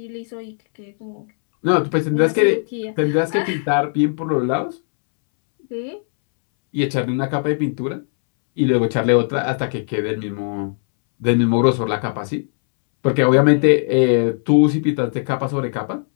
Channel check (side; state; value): right; silent; 66 dB below the other